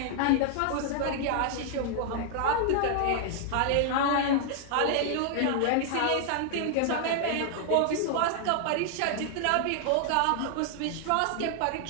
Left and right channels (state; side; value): different; both; correlation -0.01